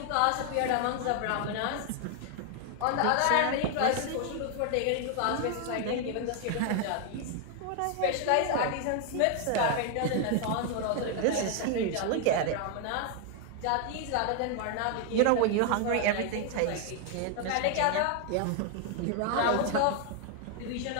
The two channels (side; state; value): both; different; correlation 0.00